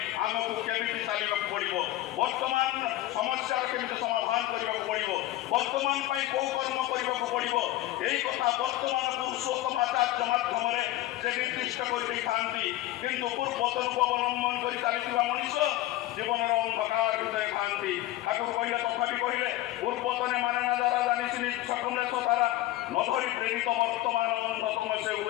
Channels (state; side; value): quieter; right; 15.7 dB